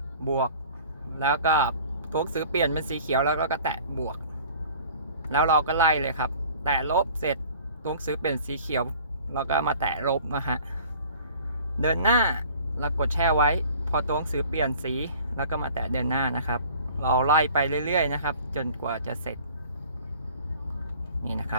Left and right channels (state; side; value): inverted; both; correlation -0.48